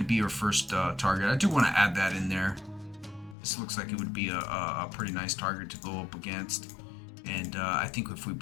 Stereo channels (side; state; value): right; drops out; at 3.4 s